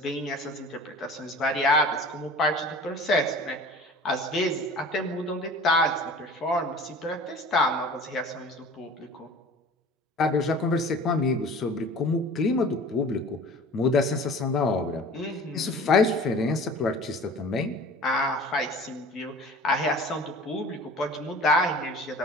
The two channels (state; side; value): normal; both; correlation 0.42